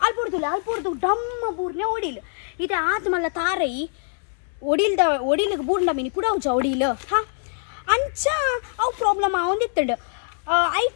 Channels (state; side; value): silent; right; 61 dB below the other